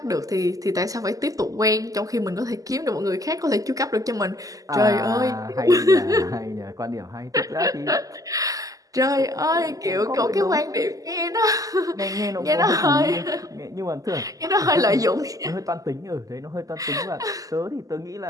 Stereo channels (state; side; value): late; left; 0.17 ms